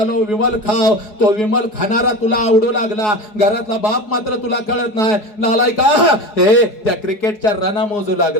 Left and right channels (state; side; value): late; right; 4.7 ms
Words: विमल खाव, तो विमल खाणारा तुला आवडू लागला, घरातला बाप मात्र तुला कळत नाही. नालायका, त्या क्रिकेटच्या रना मोजू